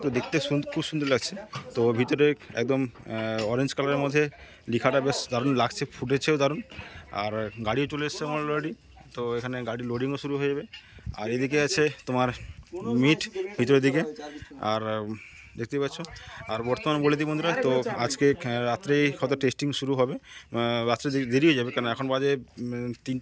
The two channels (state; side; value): identical; both; correlation 1.00